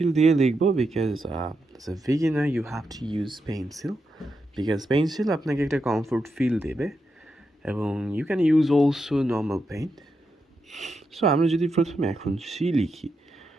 দিয়ে লিখবো because as a beginner you have to use pencil because pencil আপনাকে একটা কমফোর্ট ফিল দেবে এবং you can use also normal paint. So আমরা যদি প্রথমে এখন সি লিখি,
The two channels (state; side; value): normal; both; correlation 0.85